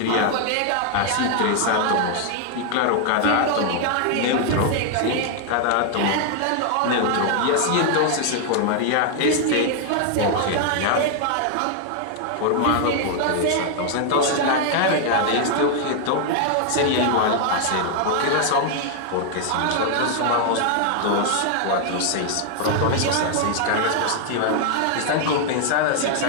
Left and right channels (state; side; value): different; both; correlation 0.00